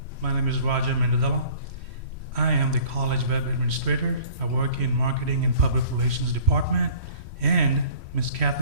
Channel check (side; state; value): left; late; 3.1 ms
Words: my name is Mendadala. I am the college web administrator. I work in marketing and public relations department, and Ms.